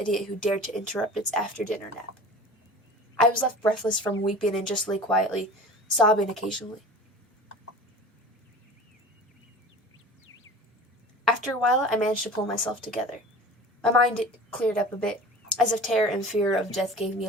who dared to interrupt its after-dinner nap. I was left breathless from weeping and just lay quietly, sobbing occasionally. After a while, I managed to pull myself together. My mind cleared up a bit, as if terror and fear of death gave me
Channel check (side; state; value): both; normal; correlation 0.39